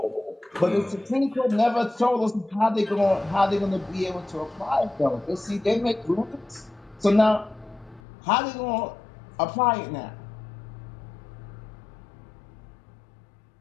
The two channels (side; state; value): right; drops out; at 8.0 s